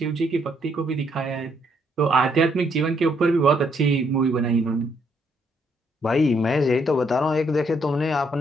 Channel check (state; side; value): normal; both; correlation 0.72